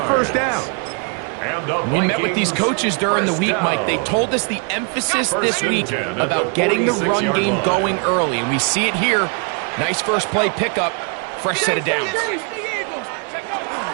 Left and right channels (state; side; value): quieter; left; 38.8 dB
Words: first down. We met with these coaches during the week, Mike. They told us the emphasis this week about getting the run game going early, and we see it here. Nice first play pickup, fresh set of downs.